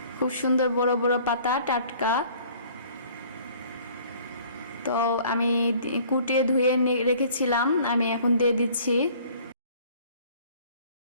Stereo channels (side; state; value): both; inverted; correlation -0.54